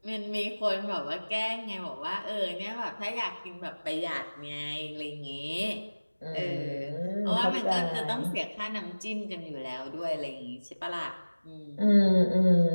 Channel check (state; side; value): inverted; both; correlation -1.00